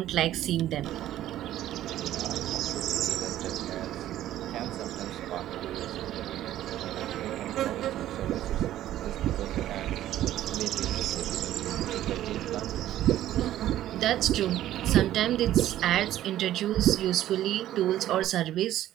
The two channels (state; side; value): quieter; left; 13.1 dB